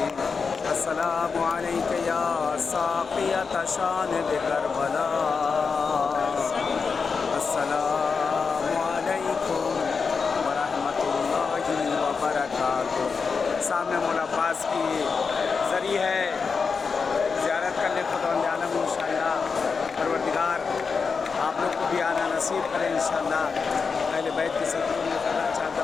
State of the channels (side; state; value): right; quieter; 5.2 dB